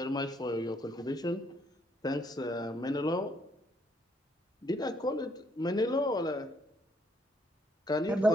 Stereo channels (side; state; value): both; normal; correlation 0.70